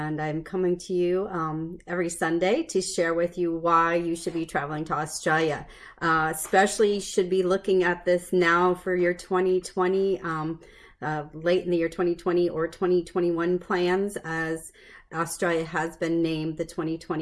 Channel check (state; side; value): identical; both; correlation 1.00